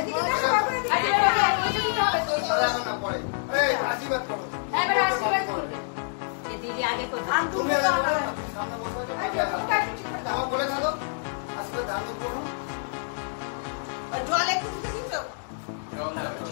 এদিকে দেখো বাবা, এদিকে দাঁড়াও না পরে। এই আশীর্বাদ করো। এবার আশীর্বাদ করবে। এই দিদি আগে করবে। তুমি আগে বলো, সামনে বসে থাকো। আমার বলে থাকো। আশীর্বাদ দান করো। জল একটু দিতে দিছো?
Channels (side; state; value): right; silent; digital silence